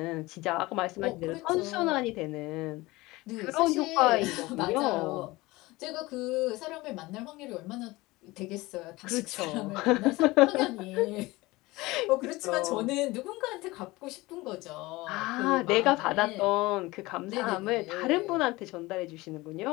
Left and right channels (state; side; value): quieter; right; 20.8 dB